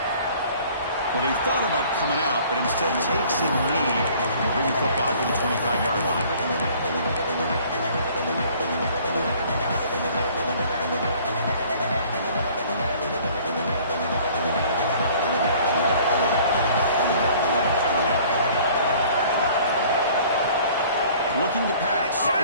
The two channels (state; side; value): inverted; both; correlation -0.53